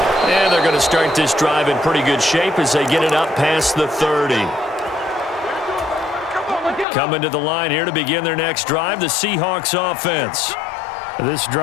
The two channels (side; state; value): right; drops out; at 6.9 s